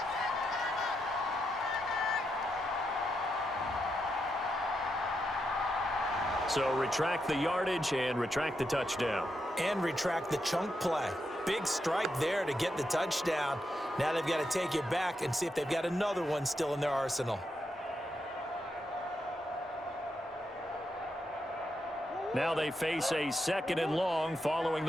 So retract the yardage and retract the touchdown. And retract the chunk play. Big strike there to get the touchdown. Now they've got to take it back and see if they've got another one still in their arsenal. Now they face a second and long following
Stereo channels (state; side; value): normal; both; correlation 0.83